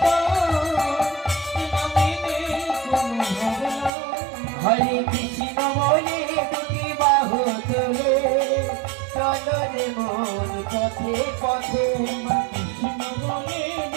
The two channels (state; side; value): drops out; left; at 3.9 s